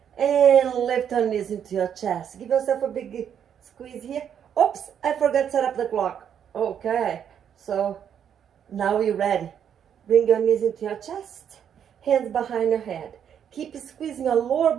And lift your knees into your chest. Give yourself a big squeeze here. Oops, I forgot to set up the clock. Okay, so now you're ready. Bring your knees into your chest. Hands behind your head. Keep squeezing your lower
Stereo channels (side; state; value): left; quieter; 8.7 dB